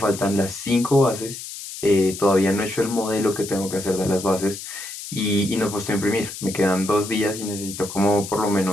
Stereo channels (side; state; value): left; noise; hiss, 10 dB below the sound